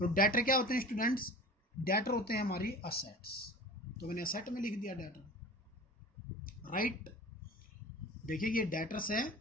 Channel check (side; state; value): both; normal; correlation 0.37